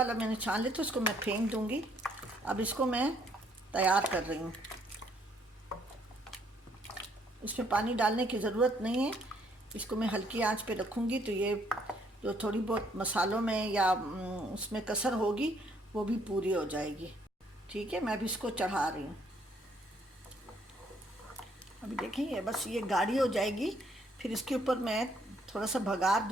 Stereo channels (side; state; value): both; normal; correlation 0.67